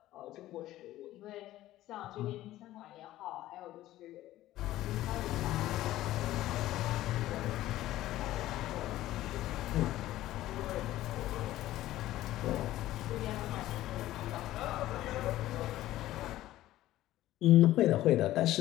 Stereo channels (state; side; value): quieter; right; 14.9 dB